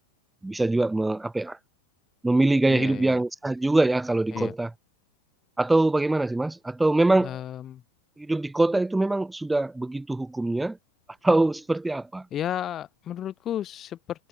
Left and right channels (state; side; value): normal; both; correlation 0.97